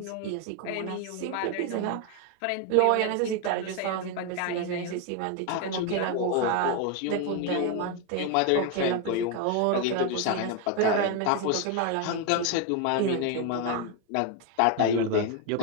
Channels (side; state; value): both; different; correlation 0.01